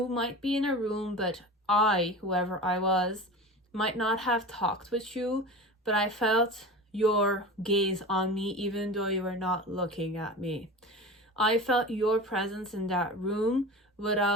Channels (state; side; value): normal; both; correlation 0.32